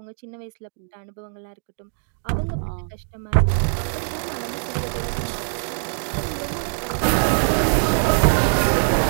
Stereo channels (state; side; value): silent; left; digital silence